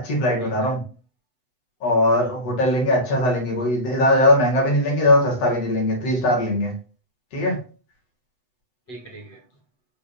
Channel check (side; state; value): right; late; 8.0 ms